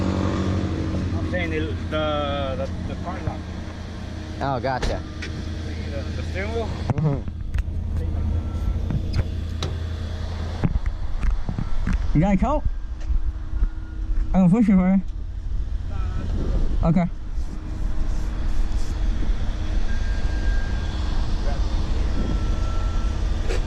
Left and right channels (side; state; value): both; identical; correlation 1.00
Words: I'm saying the car lock. Oh, gotcha. The steering wheel. You got a coat? I can push it for you. Okay.